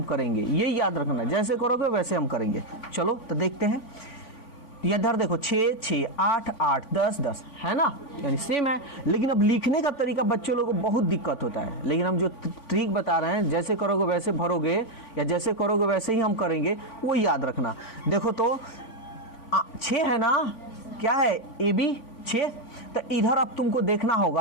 करेंगे, ये याद रखना, जैसे करोगे वैसे हम करेंगे। चलो तो देखते हैं, इधर देखो 6, 6, 8, 8, 10, 10 है ना, यानी सेम है। लेकिन अब लिखने का तरीका बच्चों लोगों को बहुत दिक्कत होता है, लेकिन हम जो ट्रिक बता रहे हैं, जैसे करोगे वैसे भरोगे या जैसे करोगे वैसे ही हम करेंगे, वो याद रखना। देखो तो 6 है ना, क्या है, AB 6। तो इधर अब तुमको देखना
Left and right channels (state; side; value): late; right; 4.4 ms